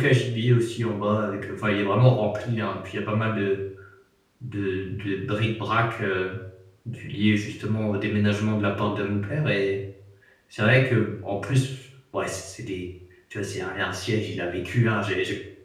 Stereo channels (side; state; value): both; identical; correlation 1.00